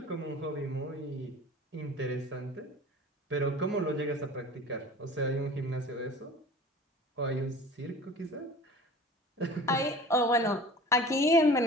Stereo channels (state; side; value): normal; both; correlation 0.41